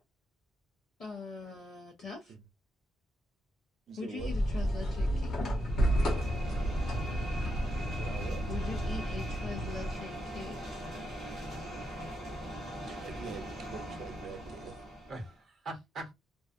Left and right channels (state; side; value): normal; both; correlation 0.84